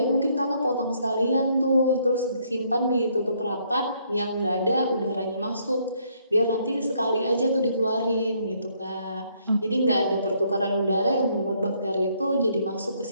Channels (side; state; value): both; inverted; correlation -0.69